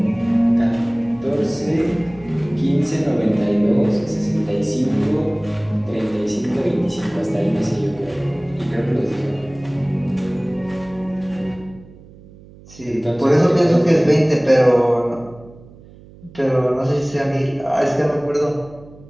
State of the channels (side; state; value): right; noise; hum, 22 dB below the sound